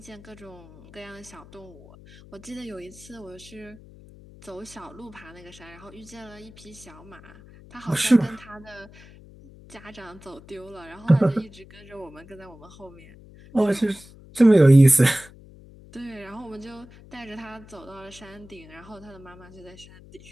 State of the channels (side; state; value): left; noise; hum, 21 dB below the sound